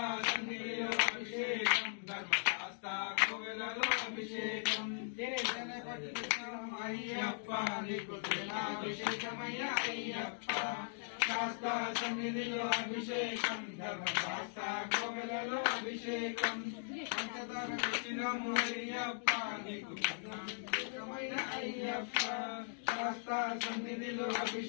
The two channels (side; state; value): right; silent; digital silence